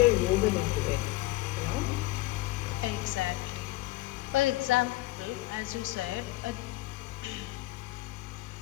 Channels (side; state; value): right; quieter; 19.1 dB